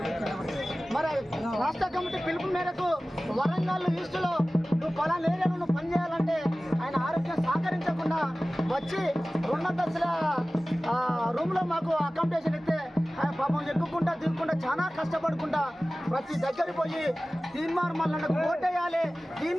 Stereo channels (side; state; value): both; normal; correlation 0.97